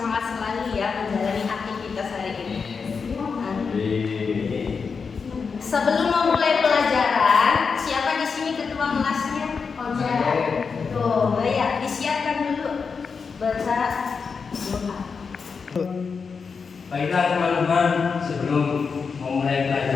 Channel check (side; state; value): right; quieter; 5.4 dB